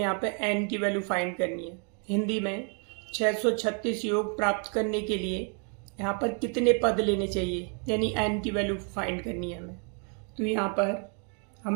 यहाँ पे एन की वैल्यू फाइंड करनी है। हिंदी में 636 योग प्राप्त करने के लिए यहाँ पर कितने पद लेने चाहिए, यानी एन की वैल्यू फाइंड करनी है हमें। तो यहाँ पर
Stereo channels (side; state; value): left; quieter; 39.7 dB